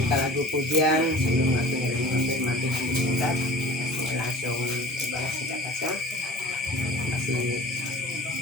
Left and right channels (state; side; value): normal; both; correlation 0.42